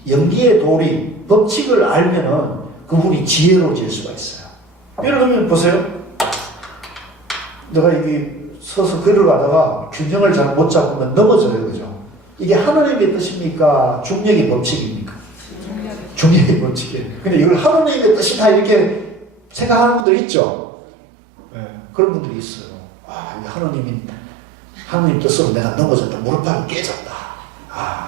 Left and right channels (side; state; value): left; drops out; at 20.1 s